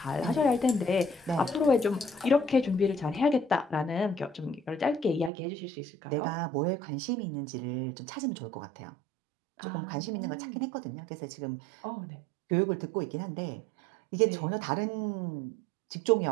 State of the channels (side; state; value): left; drops out; at 5.3 s